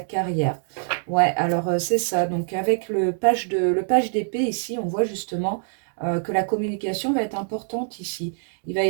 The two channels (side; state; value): left; silent; digital silence